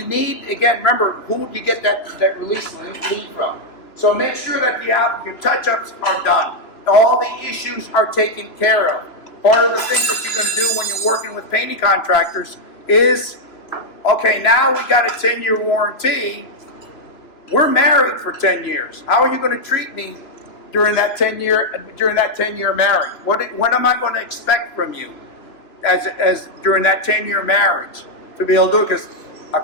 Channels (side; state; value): right; late; 3.0 ms